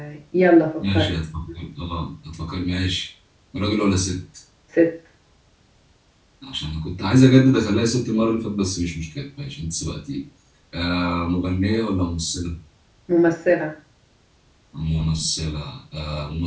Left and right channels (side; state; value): both; identical; correlation 1.00